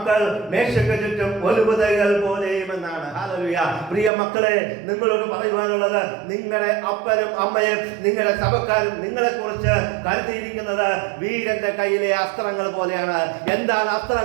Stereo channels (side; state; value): left; drops out; at 4.1 s